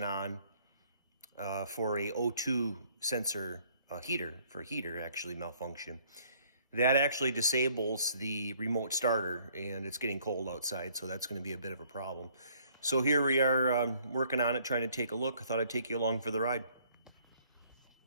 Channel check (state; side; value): inverted; both; correlation -0.62